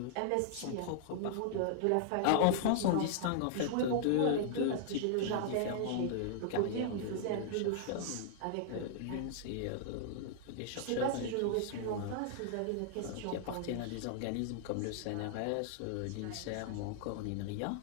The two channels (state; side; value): different; both; correlation -0.01